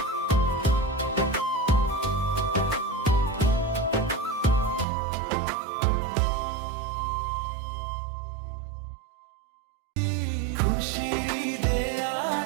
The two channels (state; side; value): drops out; left; at 4.9 s